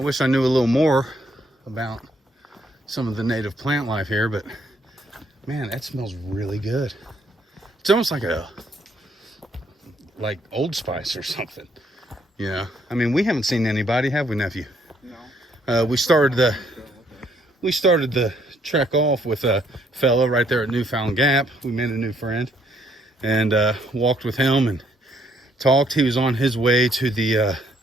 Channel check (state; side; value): normal; both; correlation 0.69